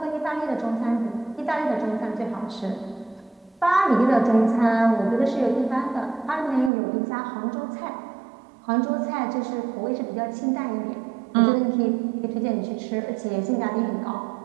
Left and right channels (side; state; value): left; drops out; at 6.7 s